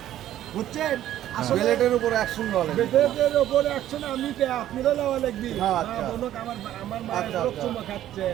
বুঝছেন? আসলে বিলেটের উপর অ্যাকশন বলে। বেটের ওপরে অ্যাকশন আমি কে আপনারা লওয়া লাগবি। হ্যাঁ, মা আচ্ছা। বোনক আমার মা আচ্ছা, লোক আচ্ছা। চুমা খাচ্ছে,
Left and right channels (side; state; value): left; quieter; 12.5 dB